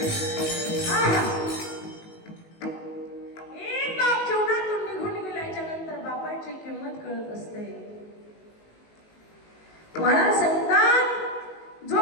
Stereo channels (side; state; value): right; late; 19 ms